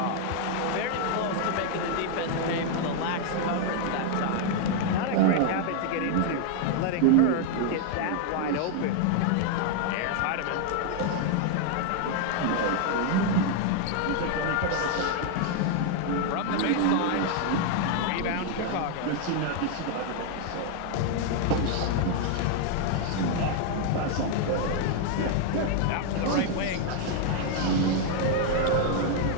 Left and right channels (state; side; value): different; both; correlation 0.00